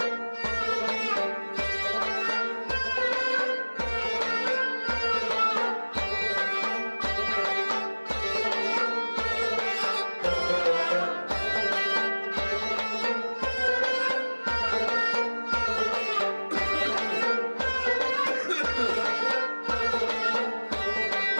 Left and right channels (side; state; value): both; inverted; correlation -1.00